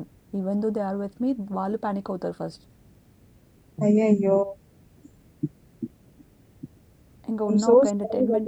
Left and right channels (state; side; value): identical; both; correlation 1.00